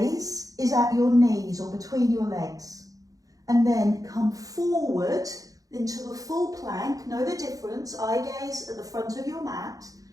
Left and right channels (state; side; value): late; left; 0.17 ms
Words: gaze is at your knees or between your legs. And then come forward into a full plank. Know the difference. Eye gaze at the front of your mat.